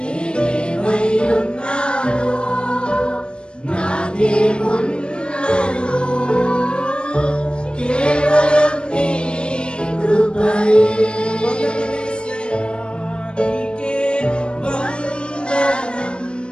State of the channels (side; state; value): right; late; 0.055 ms